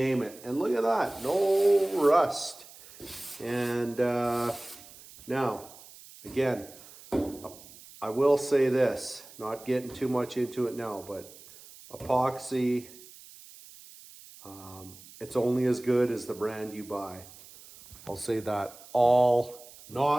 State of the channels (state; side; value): noise; right; hiss, 20 dB below the sound